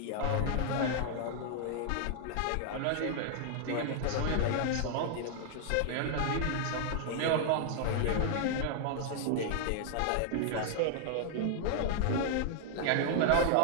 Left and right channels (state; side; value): different; both; correlation 0.00